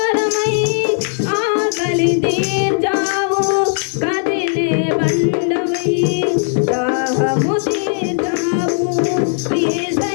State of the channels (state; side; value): silent; right; 66 dB below the other